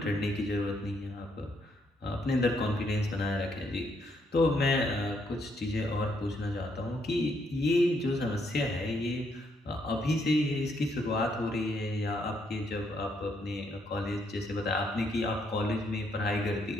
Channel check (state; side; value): normal; both; correlation 0.74